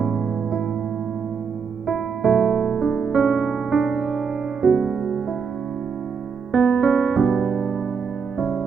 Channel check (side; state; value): left; quieter; 6.0 dB